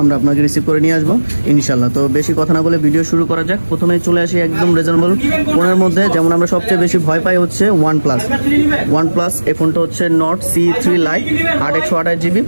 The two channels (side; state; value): both; inverted; correlation -1.00